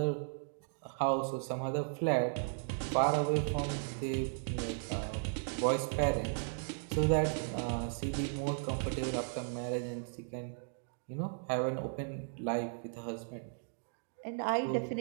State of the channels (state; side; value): silent; left; digital silence